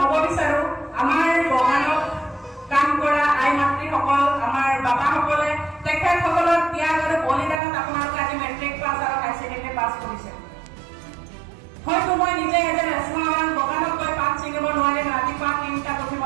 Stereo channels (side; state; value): left; drops out; at 7.6 s